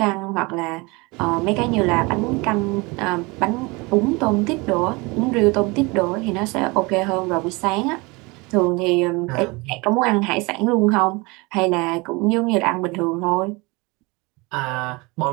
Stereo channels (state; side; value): quieter; left; 25.7 dB